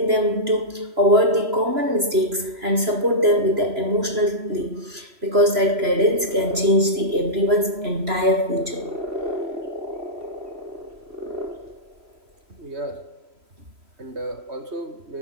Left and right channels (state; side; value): late; left; 2.9 ms